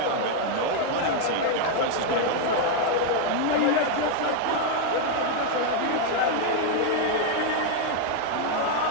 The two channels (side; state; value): both; different; correlation 0.00